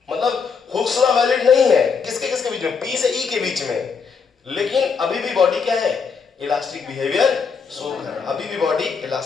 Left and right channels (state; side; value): quieter; right; 5.7 dB